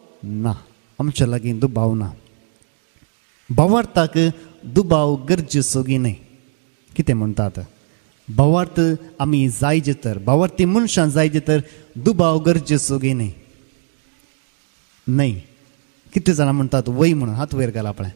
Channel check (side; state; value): left; silent; digital silence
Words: ना, आमच्या लागीं दुबाव ना. भावार्थाक दुबाव गरजेचो की न्ही? कितें म्हणटात? भावार्थ आमी जायचे तर, भावार्थी मनशां जायचे तर दुबाव गरजेचो की न्ही? न्ही. कितले जाणां म्हणटात वय म्हणून? हात वयर घाल आपणें.